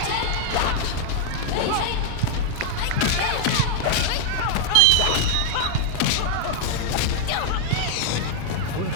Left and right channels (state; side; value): different; both; correlation 0.00